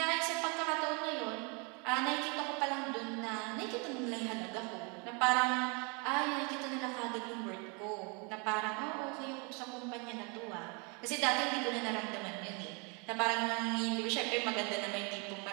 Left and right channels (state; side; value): quieter; left; 32.7 dB